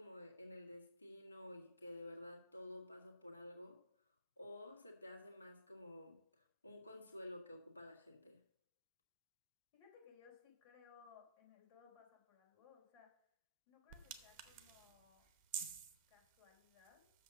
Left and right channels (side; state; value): both; inverted; correlation -0.55